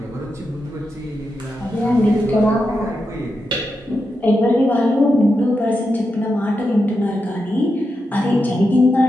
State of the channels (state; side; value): normal; both; correlation 0.87